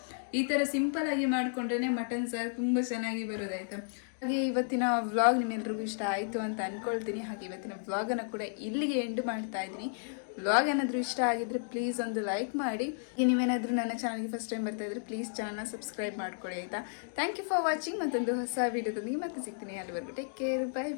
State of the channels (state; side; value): silent; right; digital silence